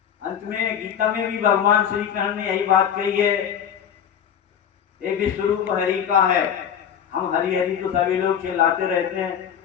अंत में गीता में भी भगवान श्री कृष्ण ने यही बात कही है, ये विश्वरूप हरि का है। हम हरि हरि तो सभी लोग चिल्लाते रहते हैं,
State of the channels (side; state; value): right; quieter; 8.7 dB